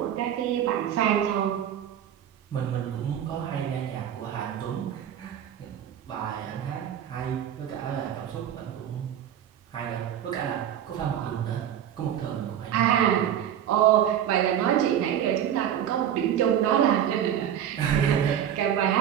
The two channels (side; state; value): left; quieter; 10.0 dB